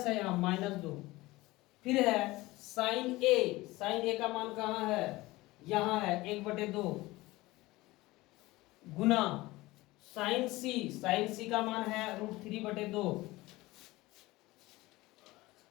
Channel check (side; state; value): right; quieter; 19.8 dB